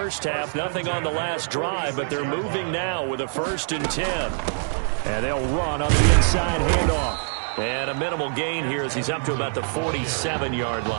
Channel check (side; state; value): left; silent; 62 dB below the other